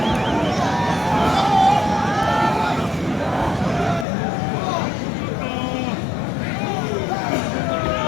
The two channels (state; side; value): drops out; right; at 4.0 s